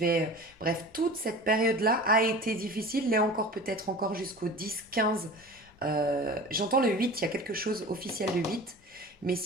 bref, toute cette période-là a été difficile, l'est encore peut-être encore jusqu'au 10-15. J'entends le 8, il y a quelque chose officiel le 8, mais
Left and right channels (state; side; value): normal; both; correlation 0.37